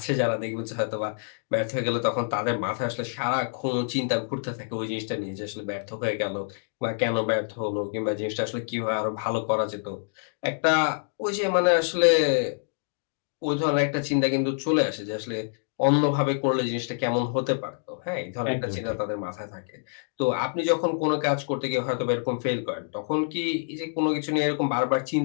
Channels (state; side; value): silent; right; digital silence